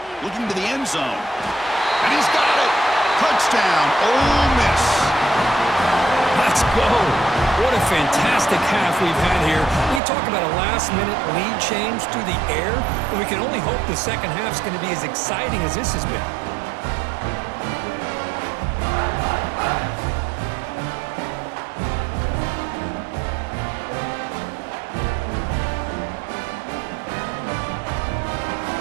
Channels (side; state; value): left; drops out; at 10.0 s